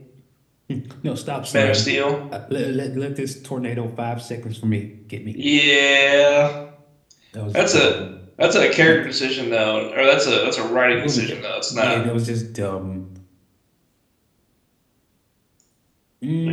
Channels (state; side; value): identical; both; correlation 1.00